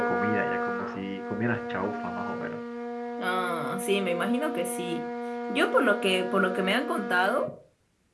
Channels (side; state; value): both; identical; correlation 1.00